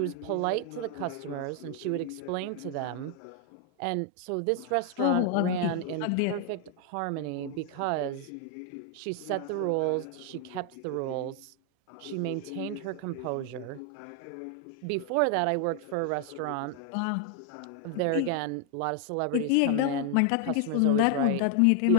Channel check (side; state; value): both; different; correlation 0.00